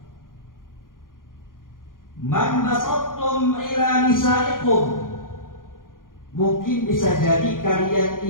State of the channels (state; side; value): late; right; 0.90 ms